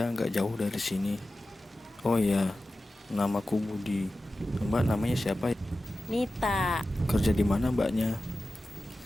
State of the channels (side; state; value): both; normal; correlation 0.94